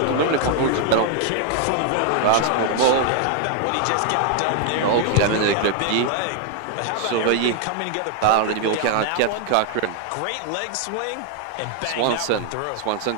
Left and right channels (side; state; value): both; different; correlation 0.00